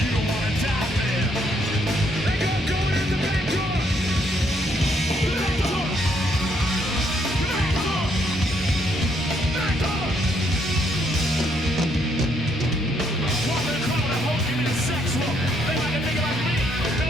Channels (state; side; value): normal; both; correlation 0.71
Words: don't wanna die there. They got going in the back door. Back door. Back door. Back door. Walk in the crowd and hope give me the sex look. They like a nigga like me, no